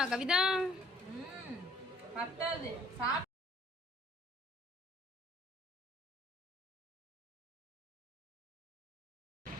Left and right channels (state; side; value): normal; both; correlation 0.59